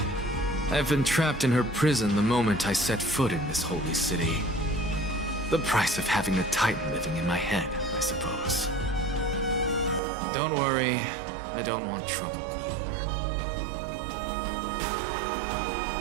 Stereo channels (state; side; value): drops out; left; at 10.0 s